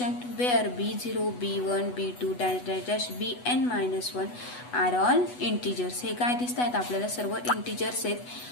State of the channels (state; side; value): late; right; 8.1 ms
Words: where b0 b1 b2 dash dash dash bn minus 1 are all integers. हे काय दिसत आहेत आपल्याला सर्व integers आहेत.